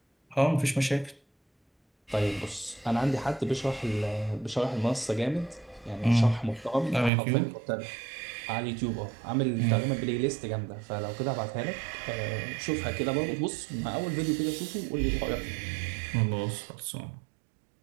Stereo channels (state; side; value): drops out; left; at 7.1 s